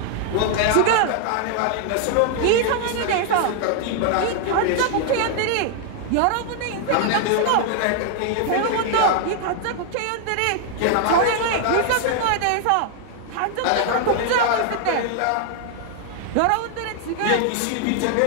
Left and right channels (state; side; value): different; both; correlation 0.00